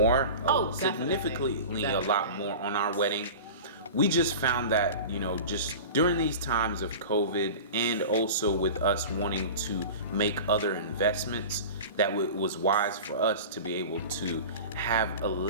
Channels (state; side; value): inverted; both; correlation -0.33